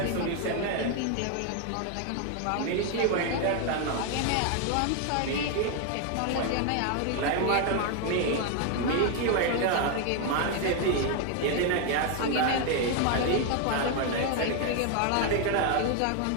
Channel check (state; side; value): different; both; correlation 0.01